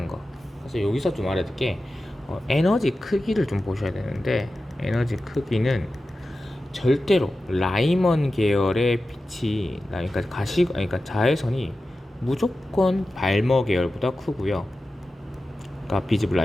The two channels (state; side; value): normal; both; correlation 0.94